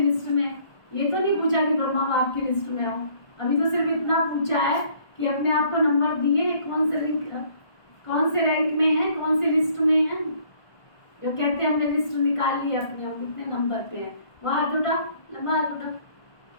में? ये तो नहीं पूछा कि ब्रह्मा बाप की लिस्ट में हो, अभी तो सिर्फ इतना पूछा है कि अपने आप को नंबर दिए, कौन से रैंक में है, कौन सी लिस्ट में है। जो कहते हैं हमने लिस्ट निकाल ली अपने, हम कितने नंबर पे हैं, वो हाथ उठा, लंबा हाथ उठा।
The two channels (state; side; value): late; right; 1.5 ms